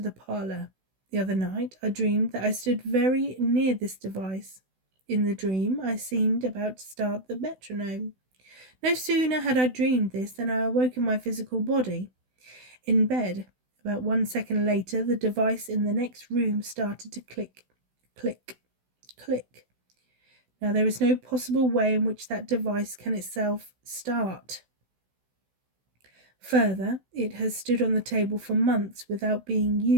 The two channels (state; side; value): late; left; 16 ms